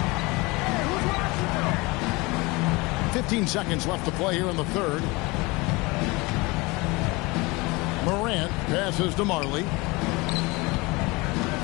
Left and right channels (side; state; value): right; quieter; 24.5 dB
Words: 15 seconds left to play here in the 3rd. Morant passes to Marley.